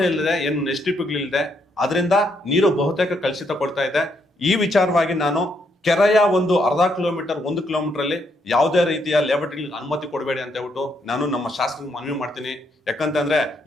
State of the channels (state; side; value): normal; both; correlation 0.75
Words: ಇಲ್ಲದೆ, ಏನು ಎಸ್ಟಿಪಿಗಳಿಲ್ಲದೆ, ಅದರಿಂದ ನೀರು ಬಹುತೇಕ ಕಲುಷಿತ ಕೊಡ್ತಾ ಇದೆ. ಈ ವಿಚಾರವಾಗಿ ನಾನು ಕೆರೆಯ ಒಂದು ಅರ್ಧ ಕಿಲೋಮೀಟರ್ 1 ಕಿಲೋಮೀಟರ್ ಅಲ್ಲಿ ಯಾವುದೇ ರೀತಿಯ ಲೇಔಟ್ಗಳಿಗೆ ಅನುಮತಿ ಕೊಡಬೇಡಿ ಅಂತ ಹೇಳ್ಬಿಟ್ಟು ನಾನು ನಮ್ಮ ಶಾಸಕರಿಗೆ ಮನವಿ ಮಾಡ್ತೀನಿ. ಯಾಕಂತಂದ್ರೆ